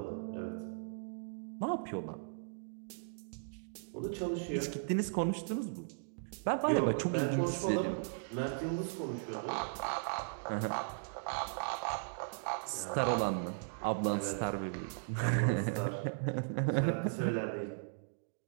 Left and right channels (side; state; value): left; silent; digital silence